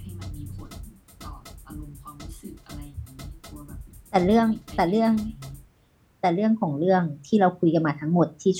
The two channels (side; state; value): both; identical; correlation 1.00